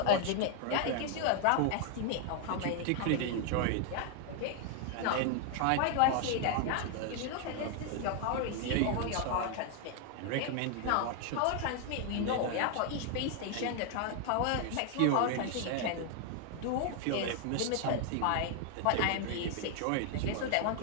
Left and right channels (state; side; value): different; both; correlation 0.00